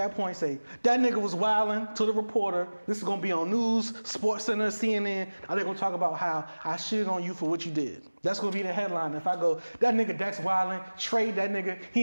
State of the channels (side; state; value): both; inverted; correlation -1.00